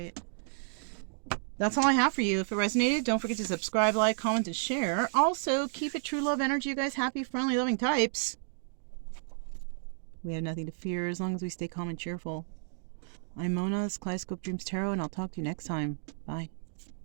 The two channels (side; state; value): left; silent; digital silence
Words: That's all I have for you. If it resonated, don't forget to subscribe, like, comment, and share. Also, keep it true love energy, you guys. Happy, friendly, loving types. We have nothing to fear as long as we stay calm and cheerful. I'm Mona, this is Kaleidoscope Dreams Tarot, and I'll talk to you next time. Bye.